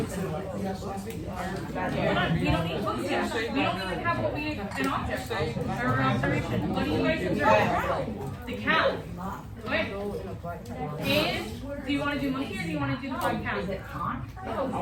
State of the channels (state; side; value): identical; both; correlation 1.00